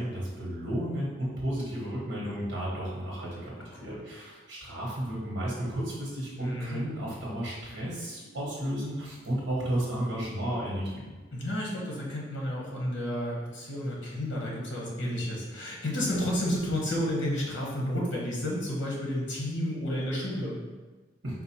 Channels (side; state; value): both; normal; correlation 0.74